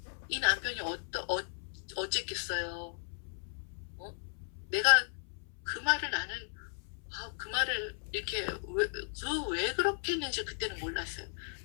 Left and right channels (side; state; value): right; silent; 54 dB below the other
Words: 이 남편이 어쨌겠어요. 내가 그 말을 나는 그 말을 이렇게 왜 그렇게 했는지 그때는 몰랐어요.